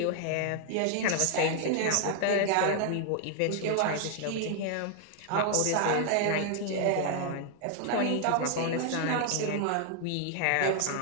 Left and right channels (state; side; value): different; both; correlation 0.00